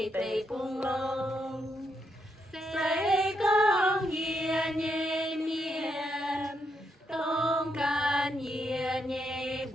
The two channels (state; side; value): normal; both; correlation 0.79